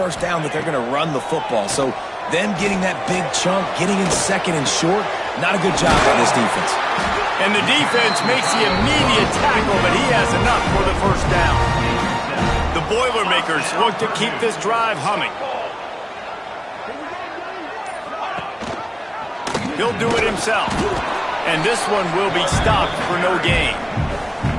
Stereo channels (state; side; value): identical; both; correlation 1.00